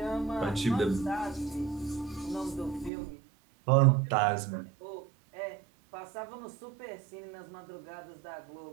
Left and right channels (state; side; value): drops out; left; at 2.9 s